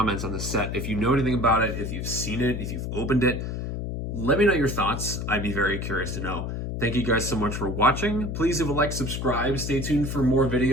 on the set, if you know anything about it, if you've seen it, if you've opened it, let me know your thoughts. I'd be very curious to know. Thank you guys so much for watching. Please leave a like, subscribe, stay tuned for more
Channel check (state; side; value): noise; left; hum, 4 dB below the sound